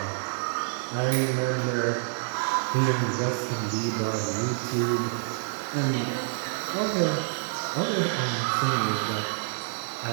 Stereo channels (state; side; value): silent; left; 56 dB below the other